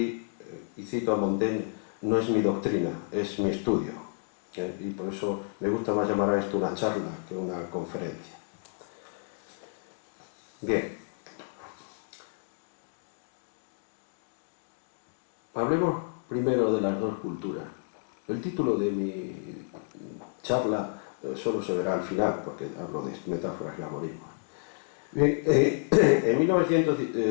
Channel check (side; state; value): right; silent; digital silence